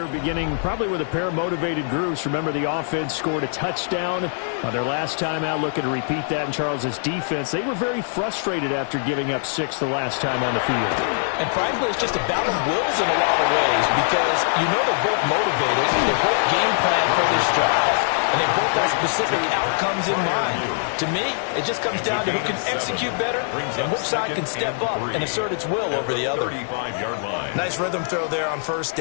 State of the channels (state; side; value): silent; right; digital silence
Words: beginning probably with a pair of motivated groups. Remember, the offense scored a touchdown on their last time out. Looking to repeat that in Charles's defense. They were very frustrated after giving up 6 the last time on the field. And frankly, it's just a battle of wills in a lot of ways because you know they're both motivated. They're both game plan for this drive. And they both have specific outcomes in mind. To me, it just comes down to who can execute better and which side can step up and assert its will over the other. Nice rhythm throw there on 1st